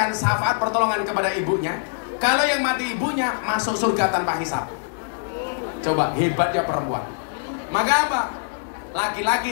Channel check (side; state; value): right; silent; digital silence